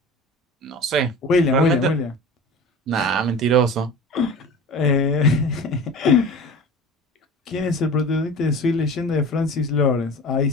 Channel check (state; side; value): normal; both; correlation 0.36